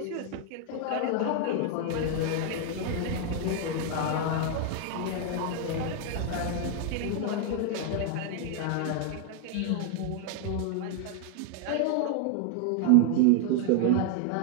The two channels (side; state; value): both; different; correlation 0.00